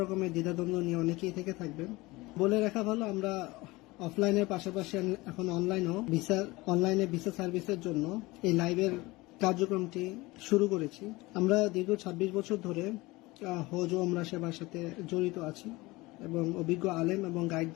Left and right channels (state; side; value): quieter; right; 21.5 dB